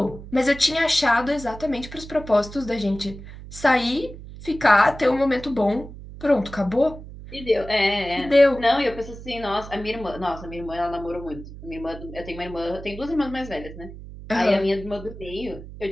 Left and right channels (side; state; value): right; noise; hum, 14 dB below the sound